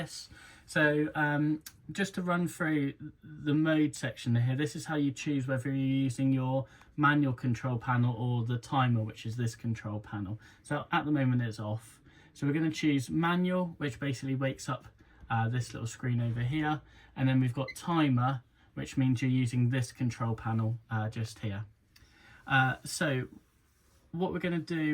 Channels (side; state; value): both; identical; correlation 1.00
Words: So just to run through the mode section here, this is how you choose whether you're using your manual control panel or the timer, which is this control panel. So at the moment it's off. So we're going to choose manual, which basically wakes up this little screen over here. And then we've got timer, which means you're using this control panel just here. So what we're going to